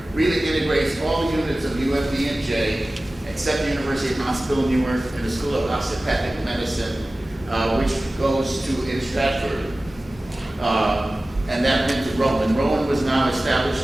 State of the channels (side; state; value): both; normal; correlation 0.97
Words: really integrates all the units of UMDNJ, except the University Hospital Newark and the School of Osteopathic Medicine, which goes to in Stratford. And that went to Rowan. Rowan was now